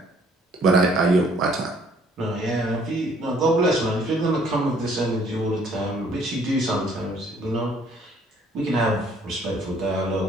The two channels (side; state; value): both; normal; correlation 0.61